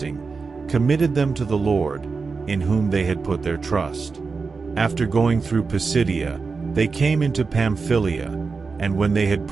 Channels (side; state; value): left; quieter; 4.6 dB